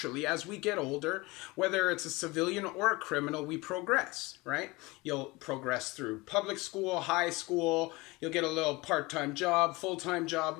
as we get older, whether it's a civilian or a criminal, we progress, right? You'll progress through public school, high school, you'll get a little part-time job, full-time job,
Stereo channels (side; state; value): right; quieter; 23.0 dB